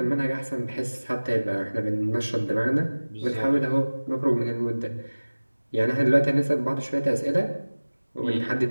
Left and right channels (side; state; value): both; inverted; correlation -1.00